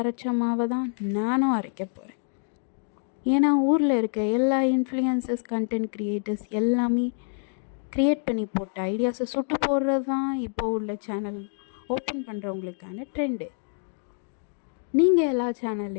மாவை தான் நானும் அரைக்க போகிறேன். ஏன்னா ஊரில் இருக்க எல்லா இன்ஃப்ளூயன்சர்ஸ், கண்டென்ட் க்ரியேட்டர்ஸ் எல்லாமே க்ரியேட் பண்ணி போட்ட ஐடியாஸை சுட்டு போடுறது தான் இப்போ உள்ள சேனல் ஓப்பன் பண்ணுறவங்களுக்கான ட்ரெண்டு. நீங்கள் எல்லா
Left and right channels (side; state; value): right; silent; 60 dB below the other